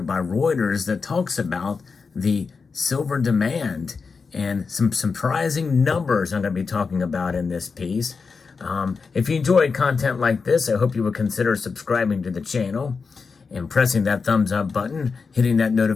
by Reuters that talks about the silver demand and some surprising numbers I'm going to be talking about in this piece. If you enjoy content like this, I hope you would consider subscribing to the channel and pressing that thumbs up button, hitting that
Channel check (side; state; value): right; quieter; 5.0 dB